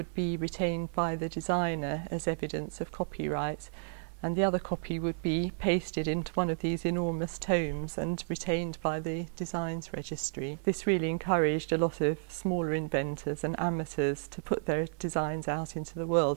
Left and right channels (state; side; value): silent; left; digital silence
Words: be retained by the designer as evidence of copyright, and the other copy would be pasted into one of these enormous tomes and retained by the Designs Registry. This really encouraged a lot of smaller inventors and amateurs to put their designs out into the